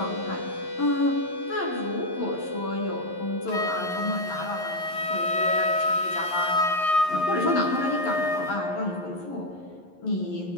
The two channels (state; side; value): late; right; 11 ms